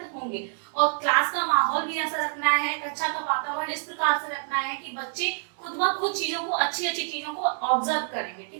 होंगे। और क्लास का माहौल भी ऐसा रखना है, कक्षा का वातावरण इस प्रकार से रखना है कि बच्चे खुद ब खुद चीजों को, अच्छी अच्छी चीजों को ऑब्जर्व करेंगे,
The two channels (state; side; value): silent; left; digital silence